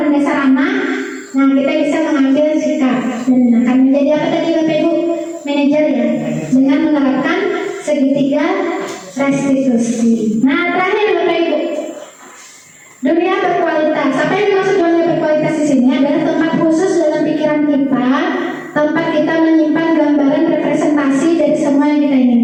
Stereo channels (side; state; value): both; identical; correlation 1.00